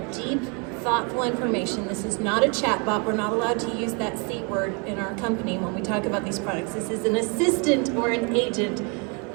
deep, thoughtful information. This is not a chatbot. We're not allowed to use that C word in our company when we talk about these products. This is an assistant or an agent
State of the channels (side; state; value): left; quieter; 33.7 dB